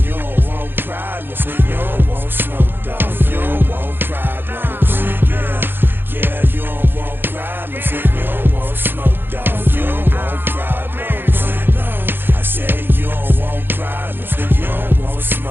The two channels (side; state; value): left; late; 0.10 ms